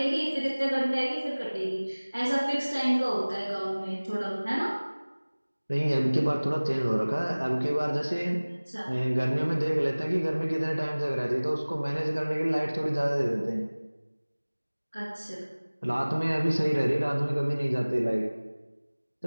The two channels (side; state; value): both; inverted; correlation -1.00